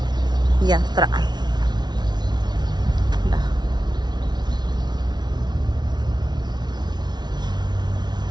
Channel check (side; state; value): left; late; 0.20 ms